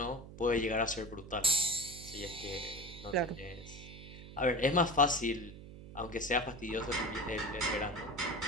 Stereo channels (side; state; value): right; noise; hum, 15 dB below the sound